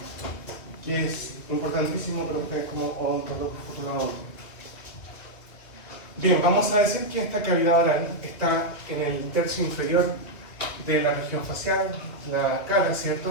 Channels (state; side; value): late; right; 2.9 ms